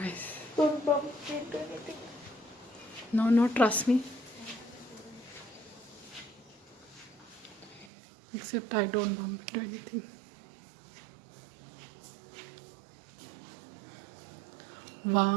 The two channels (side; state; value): left; drops out; at 7.9 s